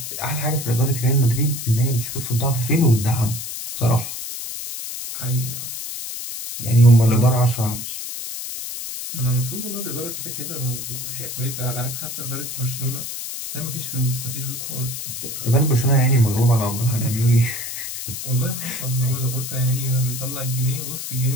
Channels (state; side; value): noise; left; hiss, 7 dB below the sound